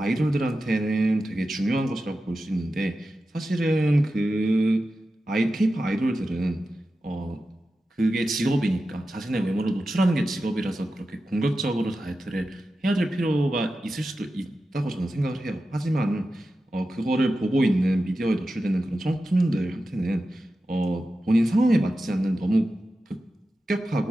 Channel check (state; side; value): normal; both; correlation 0.92